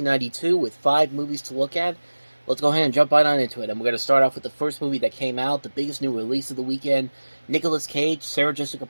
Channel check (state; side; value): inverted; both; correlation -1.00